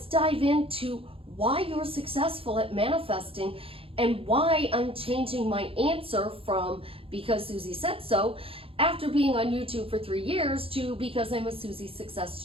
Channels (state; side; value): late; left; 0.27 ms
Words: dive into why you're successful at manifesting and why I'm changing my answer from because Suzie said so after being on YouTube for 3 years to because I'm a Suzie success